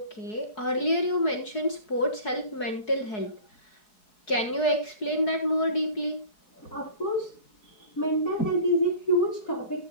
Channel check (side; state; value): right; late; 4.7 ms